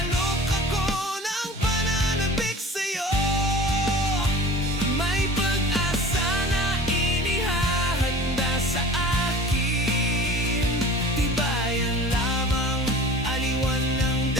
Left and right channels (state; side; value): normal; both; correlation 0.41